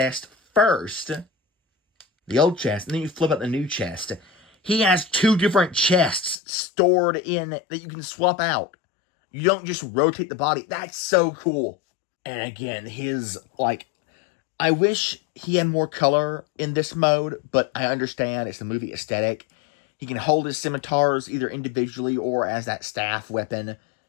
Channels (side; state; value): right; drops out; at 6.4 s